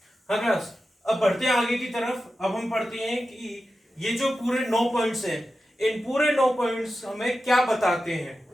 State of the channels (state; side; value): normal; both; correlation 0.92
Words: हाँ क्लास, अब बढ़ते हैं आगे की तरफ। अब हम पढ़ते हैं कि ये जो पूरे 9 पॉइंट्स हैं, इन पूरे 9 पॉइंट्स हमें क्या बताते हैं।